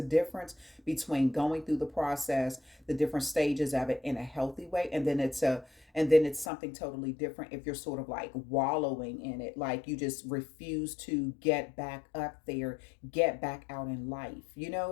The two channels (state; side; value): drops out; right; at 6.5 s